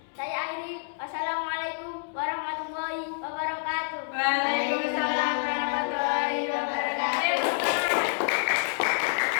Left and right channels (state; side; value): silent; right; digital silence